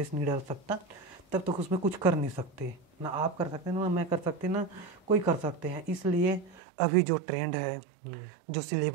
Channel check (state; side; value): drops out; left; at 6.6 s